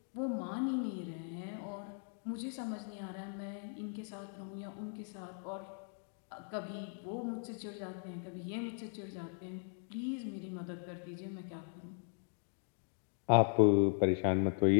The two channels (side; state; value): right; silent; 52 dB below the other